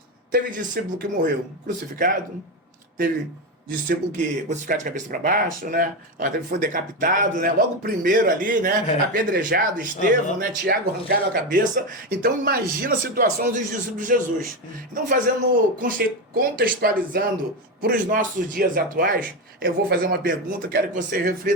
Teve discípulo que morreu crucificado, teve discípulo que crucificado de cabeça para baixo, né? Foi decapitado, né? Logo o primeiro ali, né? Apedrejado, Estevão, né? Tiago arrancaram a cabeça. Então imagina a situação dos discípulos de Jesus. Então contextualizando para os nossos dias atuais, eu vou fazer uma pergunta, quero que você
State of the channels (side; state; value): both; normal; correlation 0.13